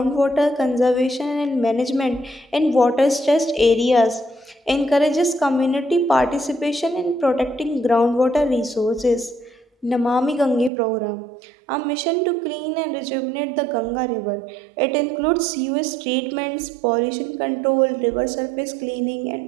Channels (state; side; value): drops out; left; at 10.7 s